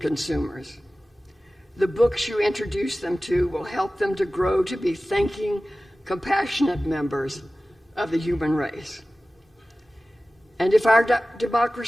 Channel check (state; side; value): normal; both; correlation 0.96